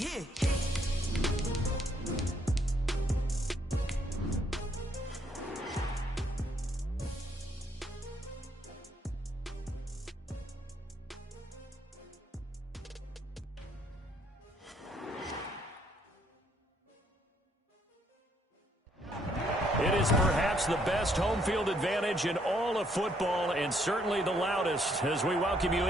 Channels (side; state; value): both; normal; correlation 0.70